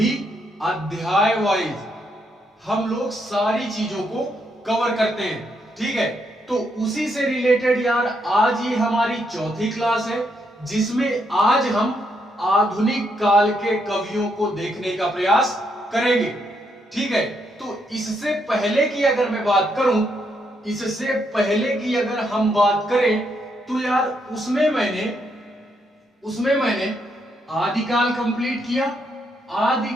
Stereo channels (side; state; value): both; normal; correlation 0.77